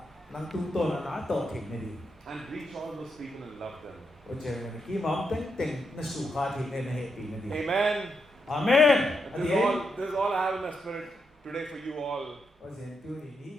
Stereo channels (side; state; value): both; normal; correlation 0.82